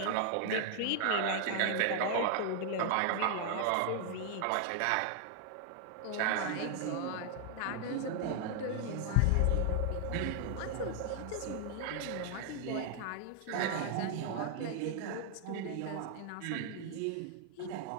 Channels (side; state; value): both; different; correlation -0.01